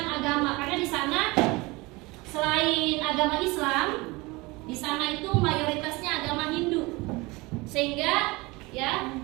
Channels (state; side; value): quieter; left; 23.6 dB